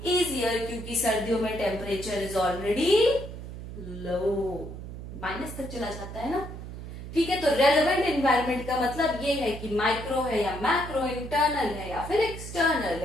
इजियर, क्योंकि सर्दियों में temperature is already low, minus तक चला जाता है ना। ठीक है, तो रेलेवेंट एनवायरनमेंट का मतलब ये है कि माइक्रो है या मैक्रो, इंटरनल है या फिर एक्सटर्नल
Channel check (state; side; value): noise; right; hum, 10 dB below the sound